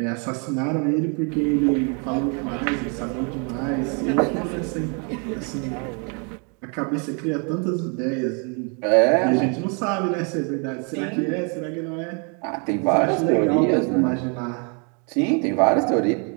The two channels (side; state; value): left; quieter; 36.8 dB